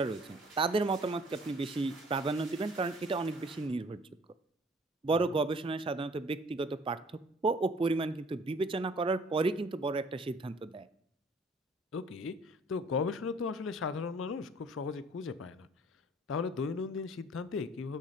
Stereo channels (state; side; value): normal; both; correlation 0.55